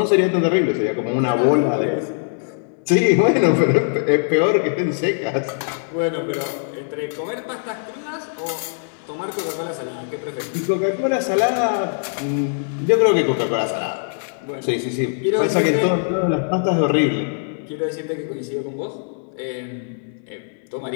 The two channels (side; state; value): right; silent; digital silence